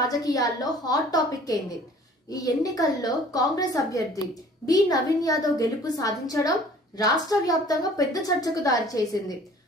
హాట్ టాపిక్ అయింది. ఈ ఎన్నికల్లో కాంగ్రెస్ అభ్యర్థి బి నవీన్ యాదవ్ గెలుపు సాధించడం రాష్ట్ర వ్యాప్తంగా పెద్ద చర్చకు దారి చేసింది.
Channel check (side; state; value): both; normal; correlation 0.51